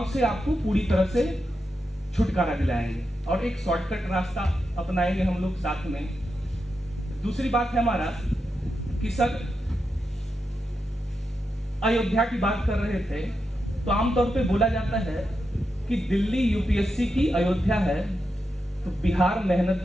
से आपको पूरी तरह से छुटकारा दिलाएंगे और एक शॉर्टकट रास्ता अपनाएंगे हम लोग साथ में। दूसरी बात है हमारा कि सर अयोध्या की बात कर रहे थे, तो आमतौर पे बोला जाता है कि दिल्ली यूपीएससी की अयोध्या है, तो बिहार मेहनत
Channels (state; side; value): normal; both; correlation 0.87